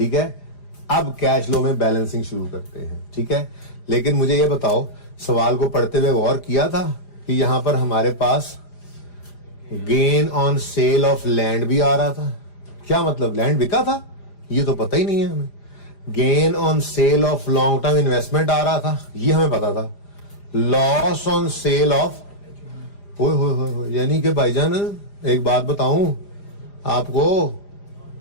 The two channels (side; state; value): right; late; 4.9 ms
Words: है। अब कैश फ्लो में बैलेंसिंग शुरू करते हैं, ठीक है। लेकिन मुझे ये बताओ, सवाल को पढ़ते हुए गौर किया था कि यहां पर हमारे पास gain on sale of land भी आ रहा था। क्या मतलब, लैंड बिका था? ये तो पता ही नहीं है हमें। Gain on sale of long term investment आ रहा था, ये हमें पता था। लॉस ऑन सेल ऑफ, हो यानी कि भाईजान एक बात बताऊं आपको